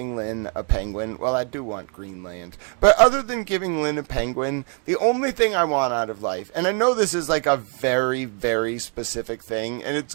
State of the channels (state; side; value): quieter; left; 37.6 dB